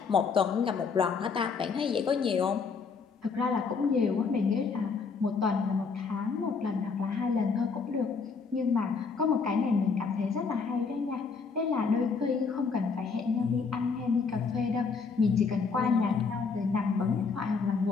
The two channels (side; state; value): right; quieter; 5.1 dB